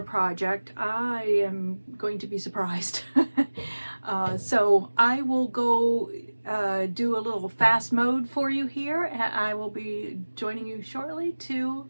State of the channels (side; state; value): both; inverted; correlation -1.00